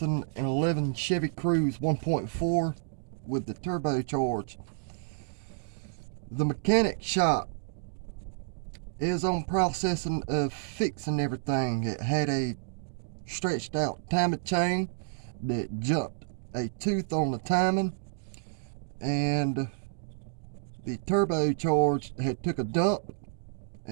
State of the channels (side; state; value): left; silent; digital silence